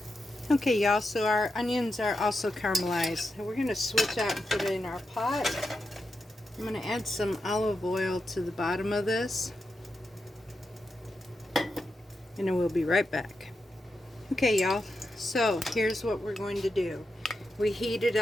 Okay, y'all, so our onions are also caramelized. And we're going to switch out and put it in our pot. I'm going to add some olive oil to the bottom of this. And then we'll be right back. Okay, y'all, so here's what we're going to do. We heated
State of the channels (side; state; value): both; normal; correlation 0.87